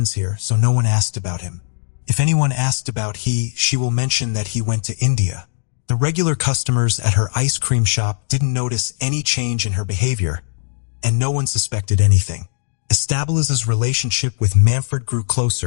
here, so no one asked about him. If anyone asked about she will mention that he went to India. The regular customers at her ice cream shop didn't notice any change in her behavior, and no one suspected anything. Estabiliza's relationship with Manfred grew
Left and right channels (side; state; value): right; silent; digital silence